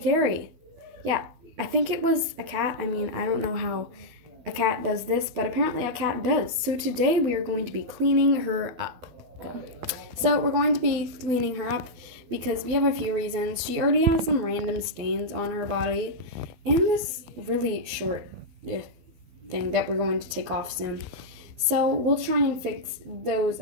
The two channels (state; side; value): late; left; 12 ms